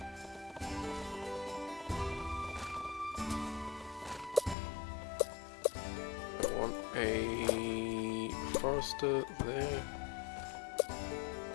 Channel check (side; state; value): right; drops out; at 4.5 s